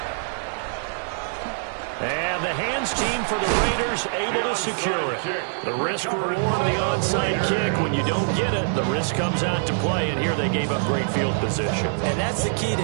And the hands team for the Raiders able to secure it. The risk-reward of the onside kick. When you don't get it, the risk comes out to play, and here they gave up great field position. And that's the key to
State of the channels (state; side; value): silent; left; 62 dB below the other